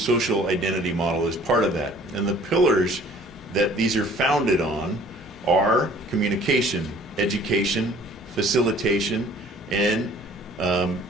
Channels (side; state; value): both; normal; correlation 0.53